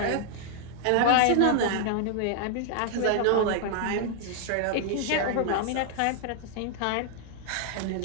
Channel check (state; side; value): different; both; correlation 0.00